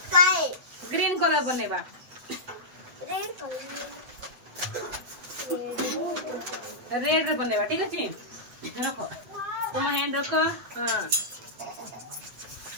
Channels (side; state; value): left; late; 8.4 ms